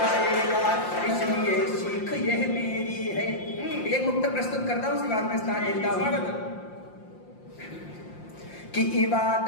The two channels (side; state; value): right; late; 5.7 ms